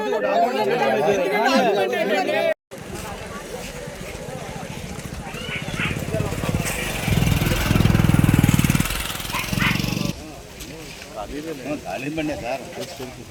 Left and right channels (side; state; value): both; identical; correlation 1.00